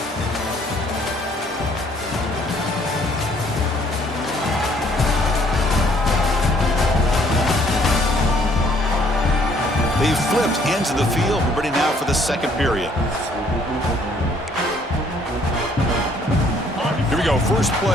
They've flipped ends of the field. We're ready now for the 2nd period. Here we go. First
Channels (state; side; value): normal; both; correlation 0.63